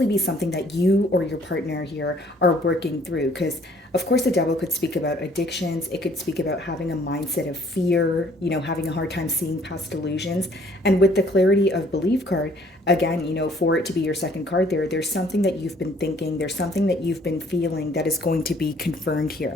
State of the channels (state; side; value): normal; both; correlation 0.60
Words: be something that you or your partner here are working through. Because, of course, the devil could speak about addictions. It could speak about having a mindset of fear, having a hard time seeing past delusions. And with the clarity of belief card, again, for it to be your second card there's something that you've been thinking, there's something that you've been feeling that is going to be confirmed